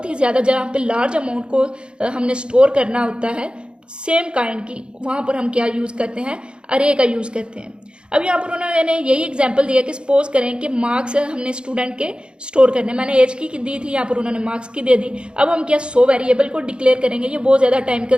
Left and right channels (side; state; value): left; late; 0.053 ms